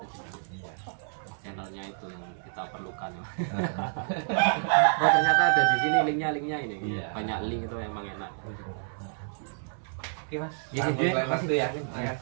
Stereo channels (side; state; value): left; silent; 59 dB below the other